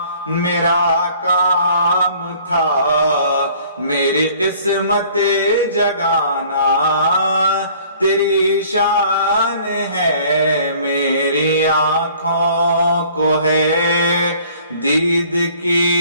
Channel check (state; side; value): inverted; both; correlation -0.54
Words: میرا کام تھا، میری قسمت جگانا تیری شان ہے، میری آنکھوں کو ہے دید